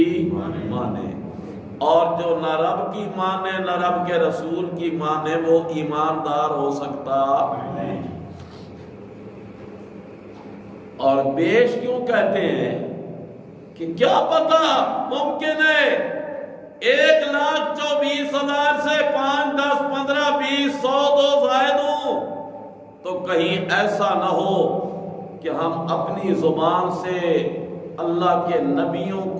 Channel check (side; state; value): both; identical; correlation 1.00